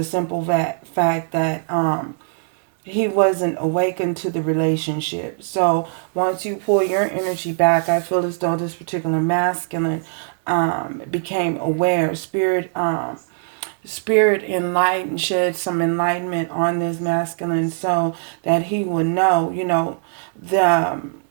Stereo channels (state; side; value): silent; left; 65 dB below the other